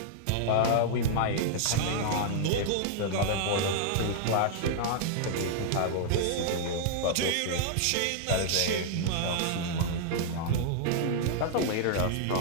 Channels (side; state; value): both; different; correlation -0.01